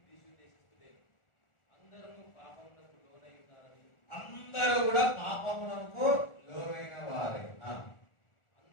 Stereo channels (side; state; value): right; late; 1.4 ms